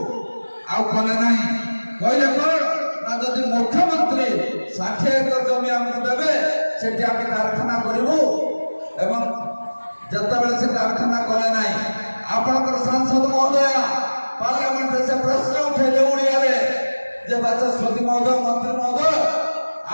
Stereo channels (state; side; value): inverted; both; correlation -1.00